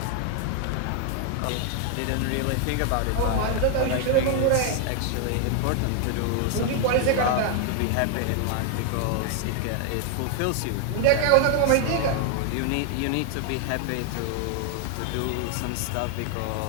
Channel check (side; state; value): both; different; correlation 0.00